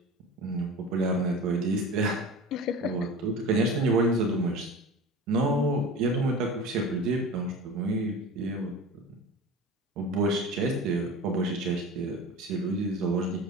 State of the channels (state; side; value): normal; both; correlation 0.35